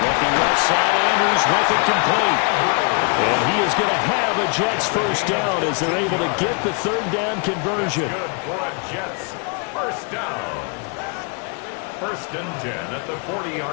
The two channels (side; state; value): right; quieter; 35.6 dB